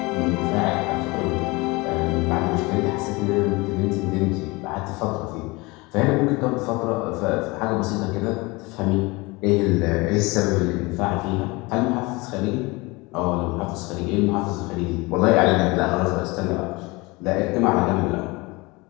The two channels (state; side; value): quieter; right; 24.5 dB